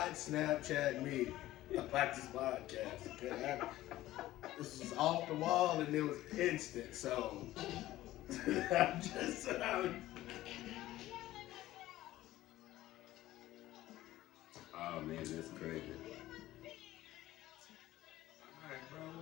Snapchat me about this podcast. Okay? This was off the wall and it was instant. So I'm just Oh man, that's crazy. Alright, bro,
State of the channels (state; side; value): quieter; right; 15.6 dB